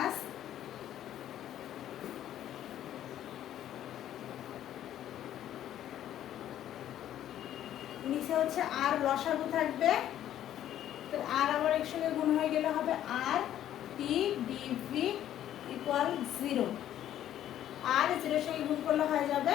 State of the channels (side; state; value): right; quieter; 11.6 dB